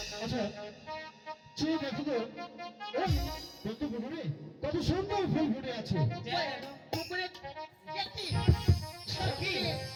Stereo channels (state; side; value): identical; both; correlation 1.00